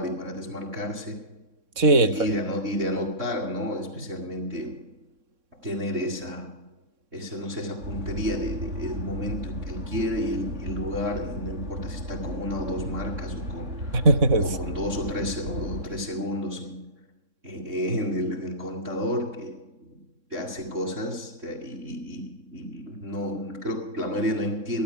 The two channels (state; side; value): late; left; 3.6 ms